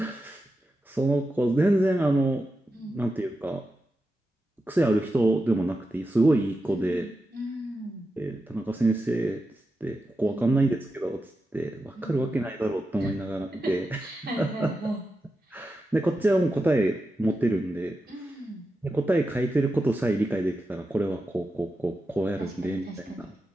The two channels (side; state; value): both; normal; correlation 0.90